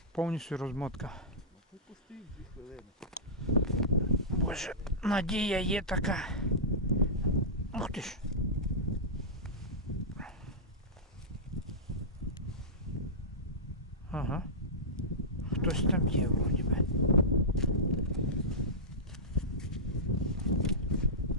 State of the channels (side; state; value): both; normal; correlation -0.16